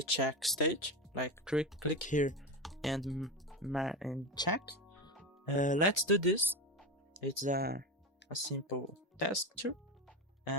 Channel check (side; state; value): both; normal; correlation 0.18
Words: check stage. Like click here and check. Let's do this. It's a simple task too.